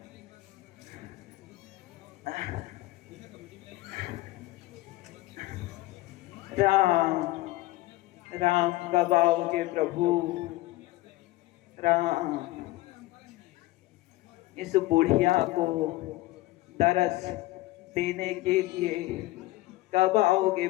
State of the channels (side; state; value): right; quieter; 18.6 dB